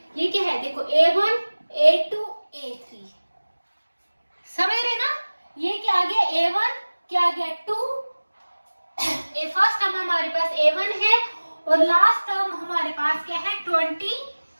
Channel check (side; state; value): both; inverted; correlation -1.00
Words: ये क्या है देखो A1 A2 A3, समझ रहे ना। ये क्या आ गया A1, क्या आ गया 2, फर्स्ट टर्म हमारे पास A1 है और लास्ट टर्म हमारे पास क्या है